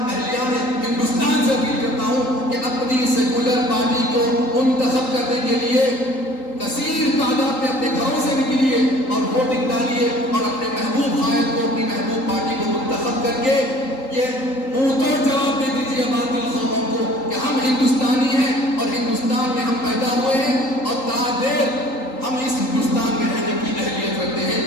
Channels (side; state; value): right; late; 3.8 ms